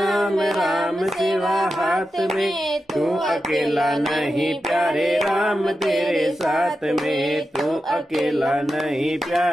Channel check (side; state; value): both; normal; correlation 0.90